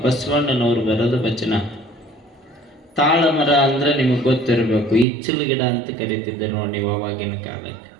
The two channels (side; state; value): left; drops out; at 5.1 s